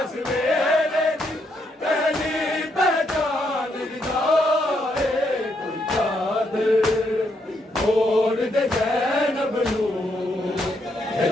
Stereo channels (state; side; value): normal; both; correlation 0.76